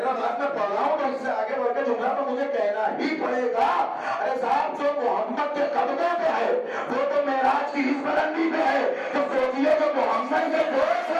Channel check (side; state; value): both; identical; correlation 1.00